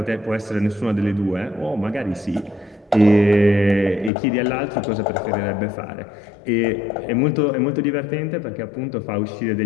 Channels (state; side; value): drops out; right; at 4.1 s